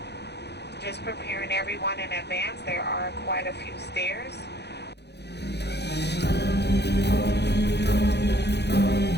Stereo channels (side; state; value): right; late; 0.49 ms